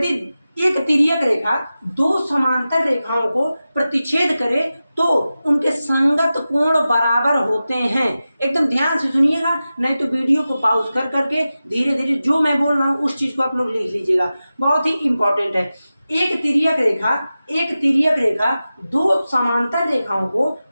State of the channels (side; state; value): both; inverted; correlation -0.94